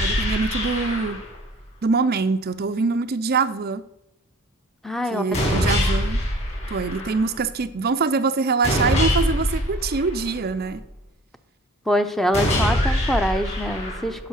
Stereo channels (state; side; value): normal; both; correlation 0.49